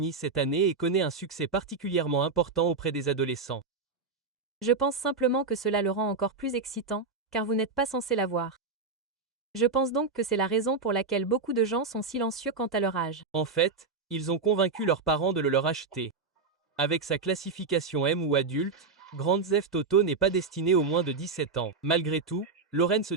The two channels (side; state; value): left; quieter; 4.4 dB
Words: cette année et connaît un succès particulièrement important auprès des adolescents. Je pense simplement que cela le rend encore plus excitant, car vous n'êtes pas censé l'avoir. Je pense donc que c'est la raison pour laquelle beaucoup de gens sont silencieux quant à leur âge. En fait, ils ont convaincu leurs parents de le leur acheter. Avec sa classification M ou adulte, Grand Theft Auto n'est pas destiné aux moins de 17 ans. Malgré tout, Lawrence